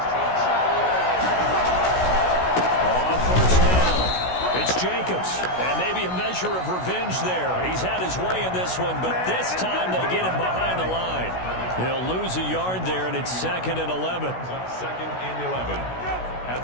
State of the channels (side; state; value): right; late; 16 ms